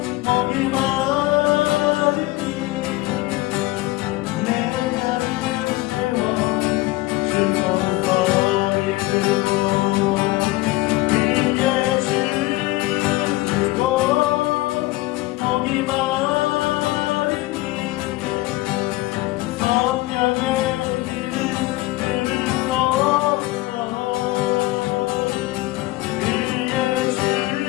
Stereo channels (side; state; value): right; quieter; 19.4 dB